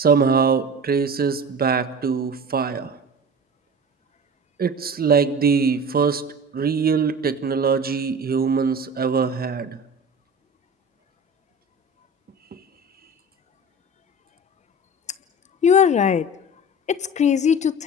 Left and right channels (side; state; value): both; normal; correlation 0.35